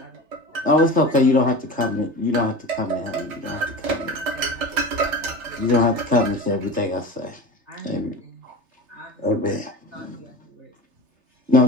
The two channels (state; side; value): late; left; 3.3 ms